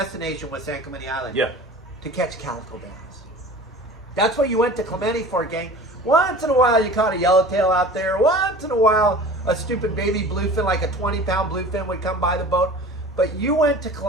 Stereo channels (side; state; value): both; normal; correlation 0.41